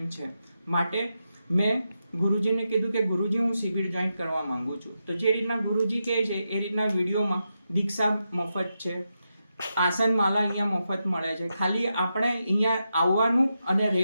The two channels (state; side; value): inverted; both; correlation -0.87